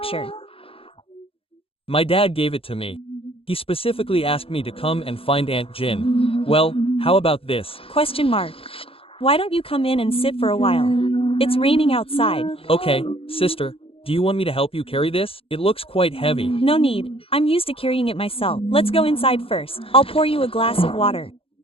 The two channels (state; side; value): late; right; 0.27 ms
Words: My dad gave it to me. He specifically asked me to come and find Aunt Jin. Well, how about this? Question mark. Why don't you come in and sit for a while? It's raining outside. Okay, sister, do you want me to help you carry this? It looks quite heavy. No need. I'm used to carrying it myself. Let's go inside first. I'll pour you a glass of water.